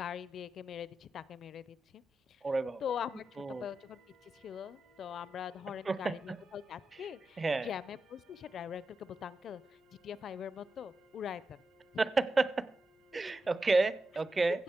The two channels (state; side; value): normal; both; correlation 0.89